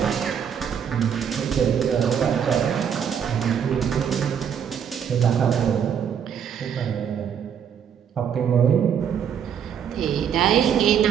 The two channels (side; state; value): left; quieter; 8.1 dB